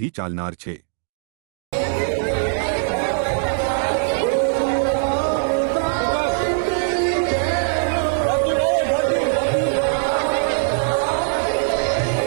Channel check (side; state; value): left; silent; digital silence